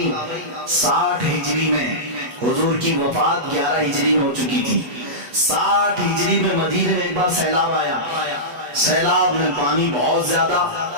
60 ہجری میں، حضور کی وفات 11 ہجری میں ہو چکی تھی۔ 60 ہجری میں مدینے میں ایک بار سیلاب آیا، سیلاب میں پانی بہت زیادہ،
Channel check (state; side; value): late; left; 8.1 ms